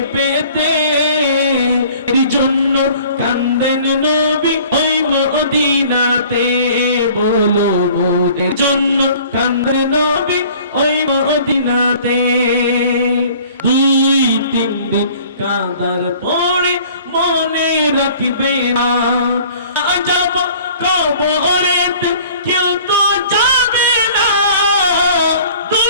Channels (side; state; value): both; inverted; correlation -0.50